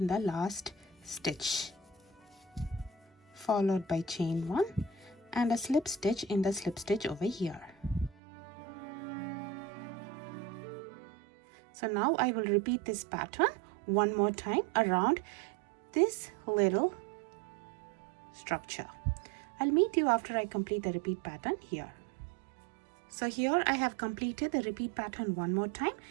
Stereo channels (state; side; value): drops out; left; at 8.2 s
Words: the last stitch, followed by chain 1 and a slip stitch in the slip stitch over here. So now I will repeat this pattern one more time around this little structure. I'll meet you after I complete the repeat pattern here. So here I have completed the repeat pattern one more time,